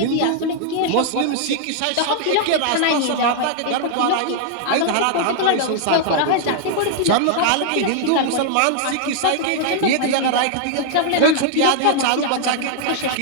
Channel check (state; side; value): different; both; correlation -0.01